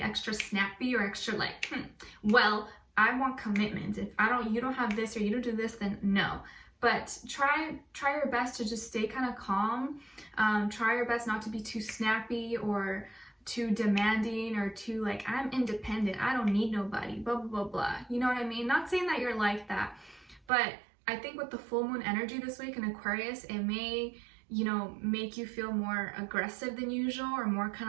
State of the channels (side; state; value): left; drops out; at 20.4 s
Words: snappy, or extra like, well, I want commitment. If you don't have this, or you don't do this, then no. But try your best to just stay kind of calm. Try your best not to be too snappy or too demanding, or too like, I'm independent, I don't need nobody, blah, blah, blah, blah. You know what I mean? Not saying that you're like that, but I think with the full moon energy this week in Aquarius, it may, you know, make you feel more aggressive than usual, or more